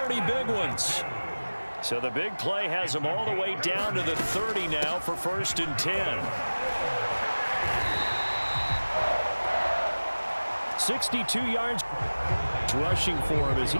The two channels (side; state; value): both; inverted; correlation -1.00